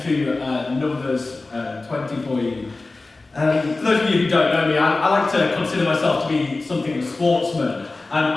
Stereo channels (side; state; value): right; quieter; 3.4 dB